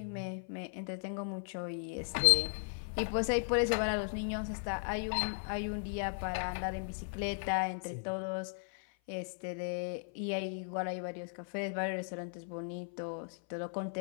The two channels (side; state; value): right; silent; 53 dB below the other